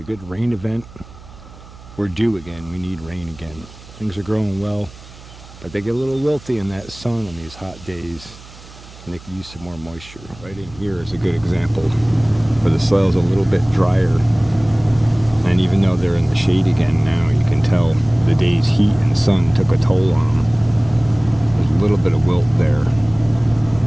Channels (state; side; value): noise; right; hum, 20 dB below the sound